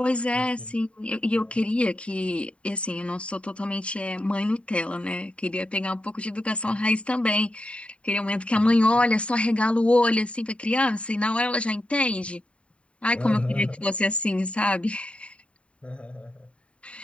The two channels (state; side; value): late; right; 0.061 ms